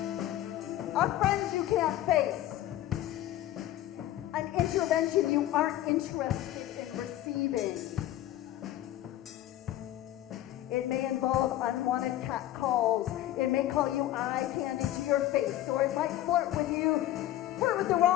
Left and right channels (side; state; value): right; quieter; 13.8 dB